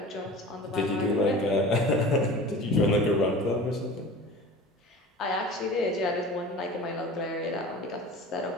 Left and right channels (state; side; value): normal; both; correlation 0.38